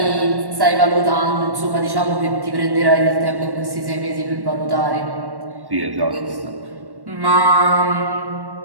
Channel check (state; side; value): late; left; 1.1 ms